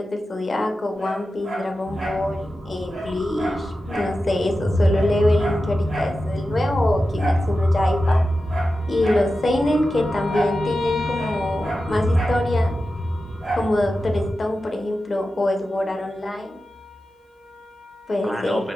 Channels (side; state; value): both; normal; correlation 0.92